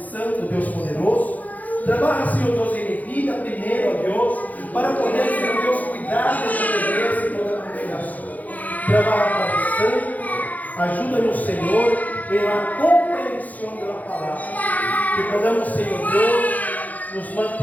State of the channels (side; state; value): right; late; 0.079 ms